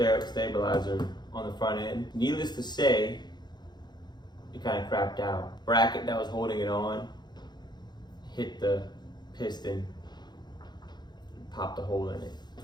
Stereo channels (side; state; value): right; late; 0.21 ms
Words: on the front end. Needless to say, it kind of crapped out. Bracket that was holding it on hit the piston, popped a hole in it.